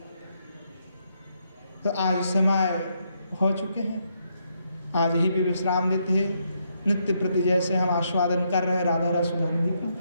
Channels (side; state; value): both; inverted; correlation -0.77